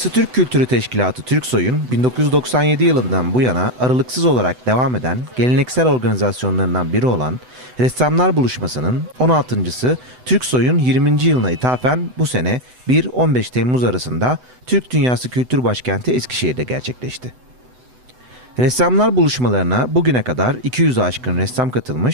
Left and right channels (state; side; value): late; left; 8.0 ms